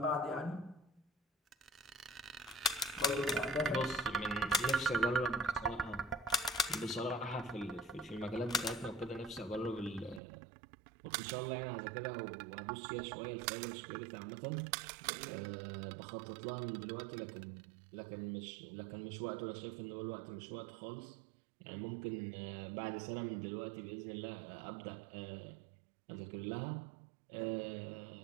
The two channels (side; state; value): left; drops out; at 10.2 s